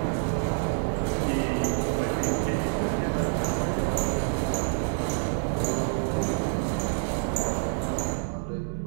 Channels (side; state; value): left; silent; 60 dB below the other